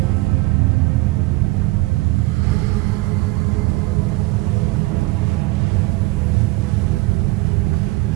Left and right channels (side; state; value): left; quieter; 21.0 dB